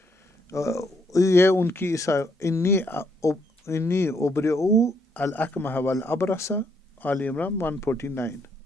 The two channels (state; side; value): normal; both; correlation 0.73